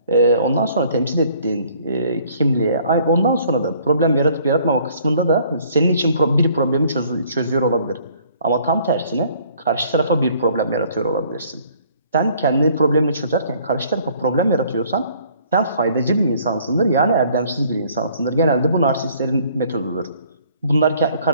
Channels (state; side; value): inverted; both; correlation -0.59